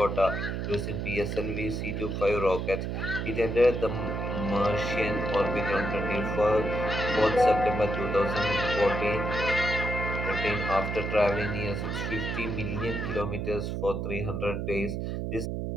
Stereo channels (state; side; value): noise; right; hum, 2 dB below the sound